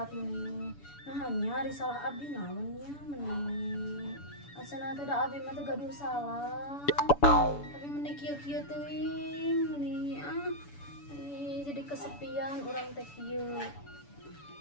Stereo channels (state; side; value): late; right; 7.0 ms